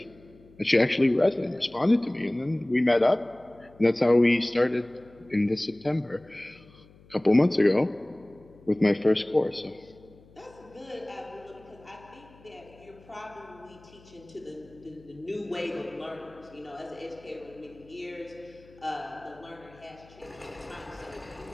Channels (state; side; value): noise; left; hum, 25 dB below the sound